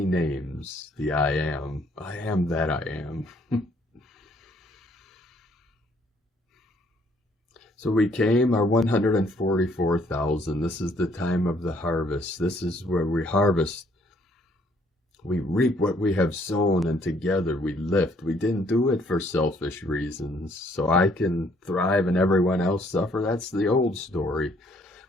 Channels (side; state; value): both; normal; correlation 0.65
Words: names, the I am. I am that I am. So we came, our 144,000. This is the time of the harvest. This is where we harvest We reap what we have sown, and together we lift. We didn't do it for selfish reasons, so I can thrive and everyone else suffer. That's the old story.